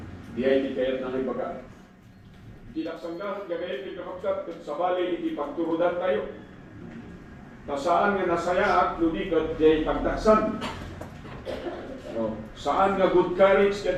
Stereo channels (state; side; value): identical; both; correlation 1.00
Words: di ay di kayat na ibaga. Tinaksangga, gagayat di kapagkat, kung sabali iti pagturudan tayo. Saan nga nasaya at ludikat, di ay pagtaksan. Saan nga good courage